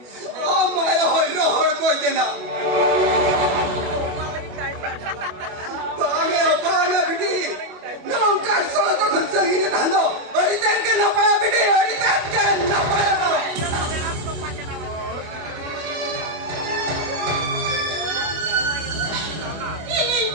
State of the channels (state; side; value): late; left; 25 ms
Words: na Bangga bidi nongkan soal to khunsa gini thando oritan ke na paya bidi oritan ke na paya ini